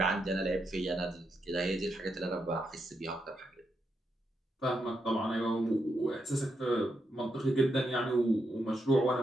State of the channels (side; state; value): both; normal; correlation 0.83